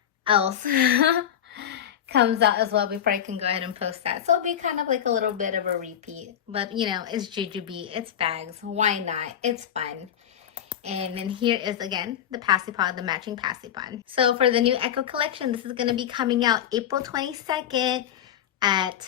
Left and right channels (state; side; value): quieter; right; 10.0 dB